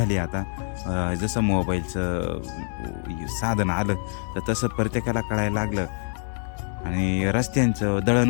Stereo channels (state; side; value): silent; right; digital silence